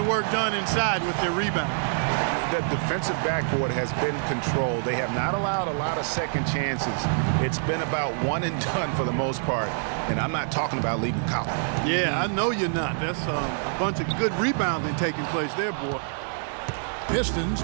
work done inside with their rebound. The defensive backboard has been controlled. They have not allowed a lot of second chances. It's been about one and done for the most part. And I'm not talking about leaving Collins. Yeah, I know you're not. That's a bunch of good rebounding taking place there, boy. Pistons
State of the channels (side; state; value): left; silent; digital silence